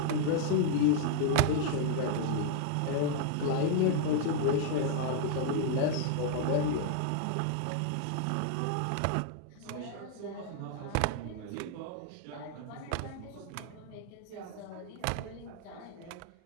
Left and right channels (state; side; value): different; both; correlation -0.01